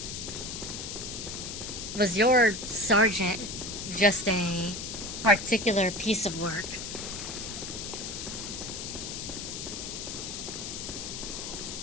was your sergeant just a particular piece of work?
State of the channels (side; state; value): left; noise; hiss, 6 dB below the sound